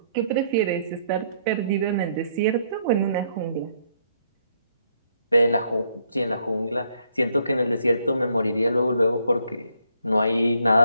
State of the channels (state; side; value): inverted; both; correlation -0.70